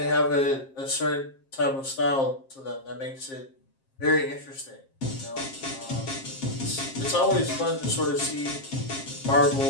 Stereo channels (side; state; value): right; late; 7.5 ms